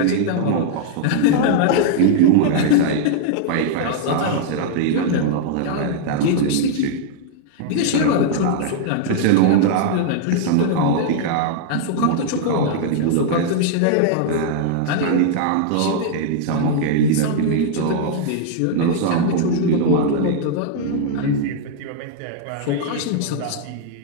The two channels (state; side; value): different; both; correlation -0.01